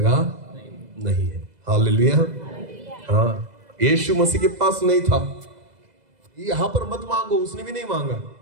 नहीं है। हालेलुया। हाँ, यीशु मसीह के पास नहीं था। यहां पर मत मांगो, उसने भी नहीं मांगा।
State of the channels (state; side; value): late; left; 2.0 ms